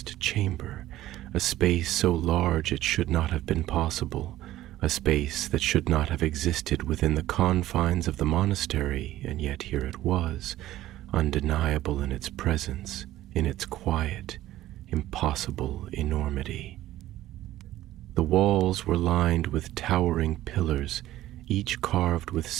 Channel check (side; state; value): left; quieter; 14.6 dB